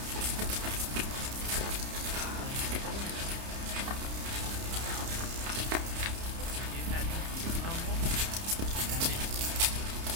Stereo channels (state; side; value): late; left; 30 ms